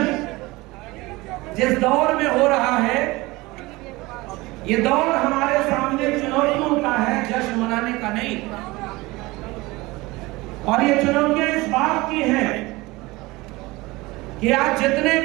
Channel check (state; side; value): quieter; left; 21.4 dB